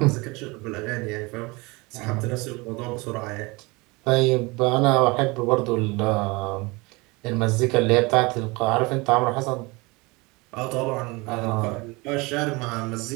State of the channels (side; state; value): left; quieter; 25.2 dB